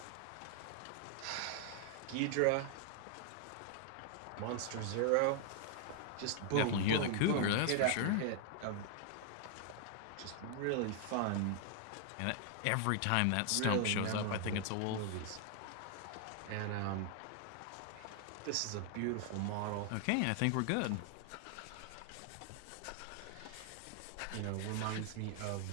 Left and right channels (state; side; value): different; both; correlation 0.00